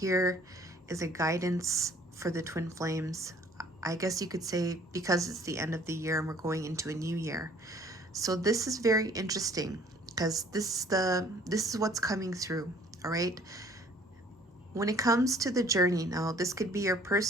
is a guidance for the Twin Flames. I guess you could say because it's the end of the year and we're going into a new year. So this is very interesting because this is what's coming through, all right? When it comes to the journey, now this could be your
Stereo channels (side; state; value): both; normal; correlation 0.56